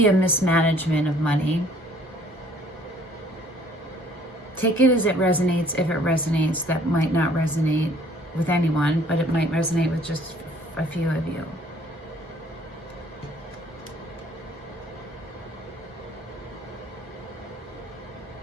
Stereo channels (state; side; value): normal; both; correlation 0.58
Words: a mismanagement of money. Take it as it resonates. If it resonates, that might not resonate with anyone, but it might resonate with just a few of you.